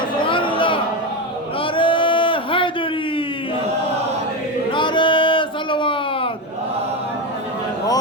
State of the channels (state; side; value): normal; both; correlation 0.15